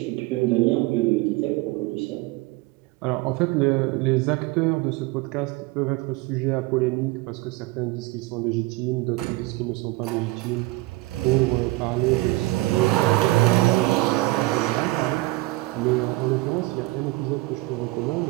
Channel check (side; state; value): left; quieter; 20.6 dB